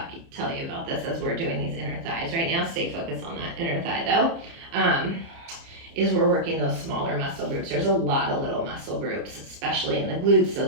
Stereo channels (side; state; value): left; late; 30 ms